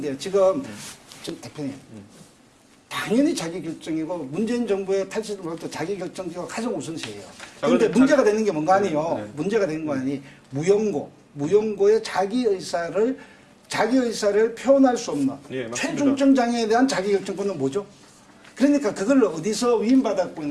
지금 대표님 당연히 자기결정이고 문재인 정부의 탈시설부터 자기결정이 가장 우선시해요. 그런데 문제가 되는 게 뭔가 아니에요. 네. 문제가 되는 거 아니 무용고의 자기 의사를 표현할 수 없는 예, 맞습니다. 최중증 장애에 대한 자기결정권은 뭐죠? 그러니까 그걸 어디서 위임받았고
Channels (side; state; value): both; identical; correlation 1.00